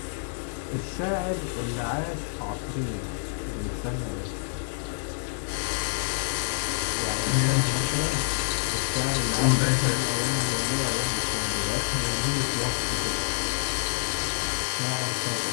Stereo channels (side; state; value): right; silent; digital silence